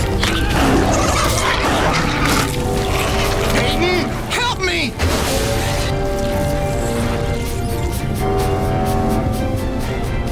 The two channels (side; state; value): both; identical; correlation 1.00